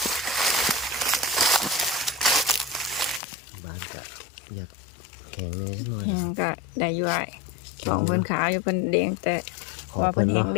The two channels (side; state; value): right; drops out; at 3.2 s